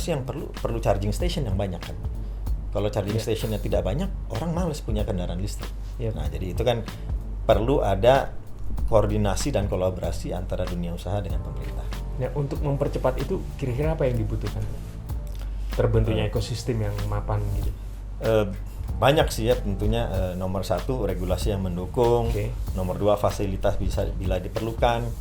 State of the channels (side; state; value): both; identical; correlation 1.00